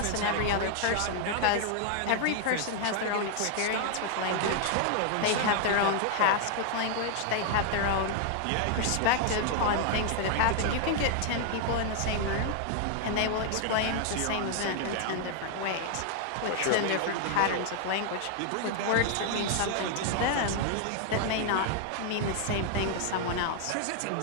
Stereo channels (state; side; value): different; both; correlation 0.00